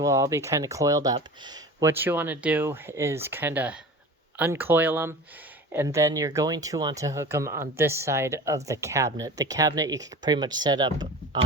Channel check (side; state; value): both; normal; correlation 0.36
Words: all be kind of coiled up. What you want to do is kind of uncoil them, and then you're going to want to hook them on this side of the cabinet. The cabinet you can pretty much set up